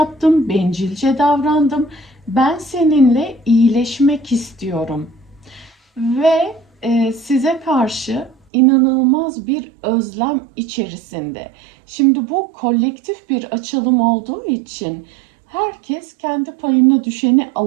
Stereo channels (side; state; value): left; drops out; at 8.3 s